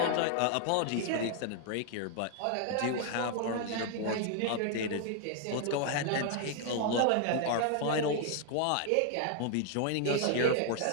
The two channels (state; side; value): different; both; correlation 0.00